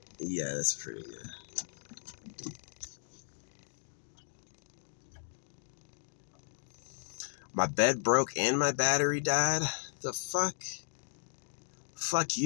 Yeah, that's pretty good. My bed broke and my battery died? The fuck? Fuck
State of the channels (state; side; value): silent; right; digital silence